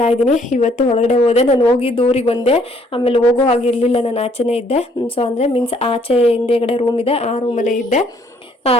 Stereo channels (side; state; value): both; normal; correlation 0.64